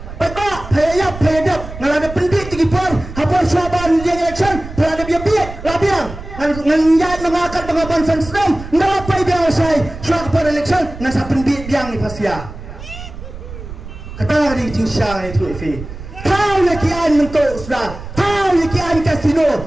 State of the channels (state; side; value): noise; right; rumble, 12 dB below the sound